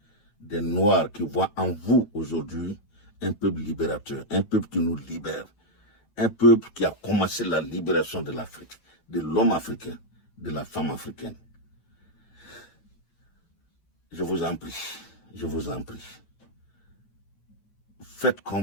des Noirs qui voient en vous aujourd'hui un peuple libérateur, un peuple qui nous libère, un peuple qui a commencé la libération de l'Afrique, de l'homme africain, de la femme africaine. Je vous en prie, je vous en prie. Faites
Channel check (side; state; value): right; late; 9.1 ms